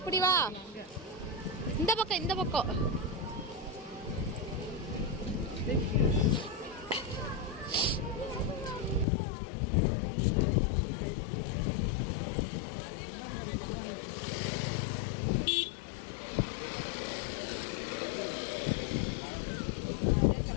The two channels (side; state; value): right; drops out; at 9.1 s